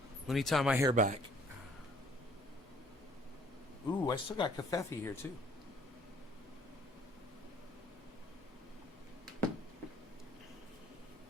Let me tie my hair back. Ooh, I still got kafefe here, too.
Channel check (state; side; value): normal; both; correlation 0.58